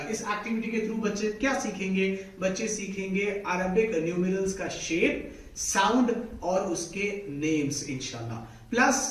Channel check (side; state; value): both; identical; correlation 1.00